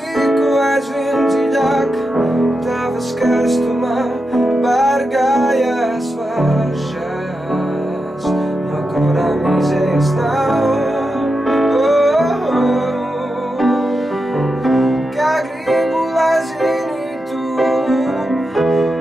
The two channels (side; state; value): both; normal; correlation 0.88